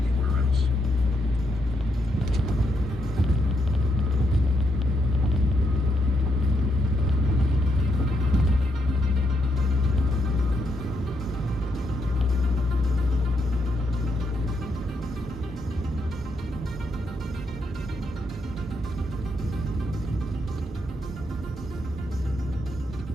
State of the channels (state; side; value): normal; both; correlation 0.79